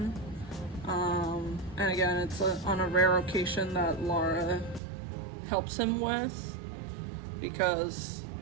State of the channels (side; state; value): left; drops out; at 4.8 s